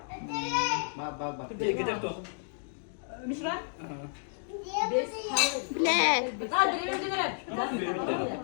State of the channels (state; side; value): silent; right; digital silence